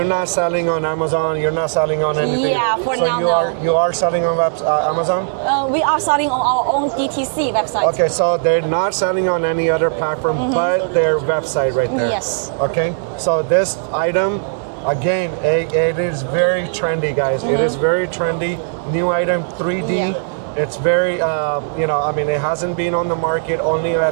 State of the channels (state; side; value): silent; left; 63 dB below the other